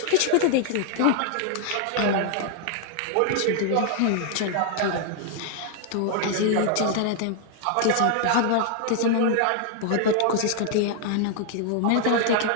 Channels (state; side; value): different; both; correlation 0.00